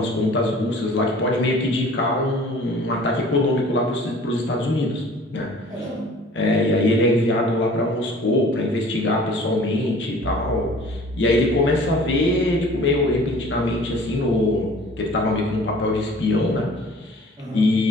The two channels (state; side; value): normal; both; correlation 0.48